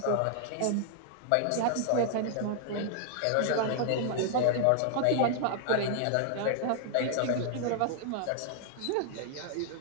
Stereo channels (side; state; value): both; different; correlation -0.01